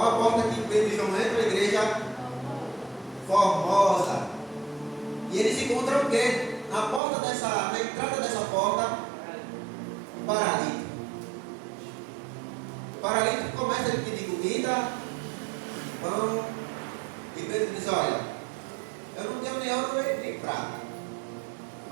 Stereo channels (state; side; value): drops out; left; at 7.0 s